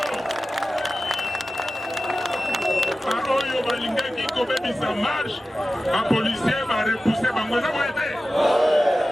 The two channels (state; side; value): normal; both; correlation 0.95